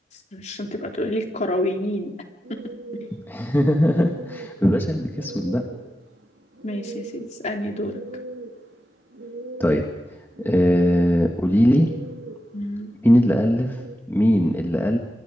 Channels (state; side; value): normal; both; correlation 0.90